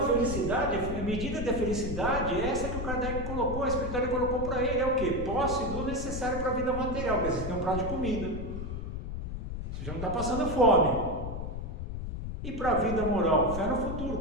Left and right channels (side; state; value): left; noise; rumble, 5 dB below the sound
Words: felicidade, a medida da felicidade é essa que o Kardec colocou, a espiritualidade colocou para ele, é o quê? Posse do necessário para a vida material, quer dizer, você tem um prato de comida, você já não está passando fome. E para a vida moral, fé no futuro,